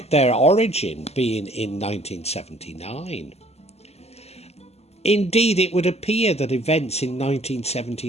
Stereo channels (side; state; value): right; late; 0.30 ms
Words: their origin being in 1979. Indeed, it would appear that events in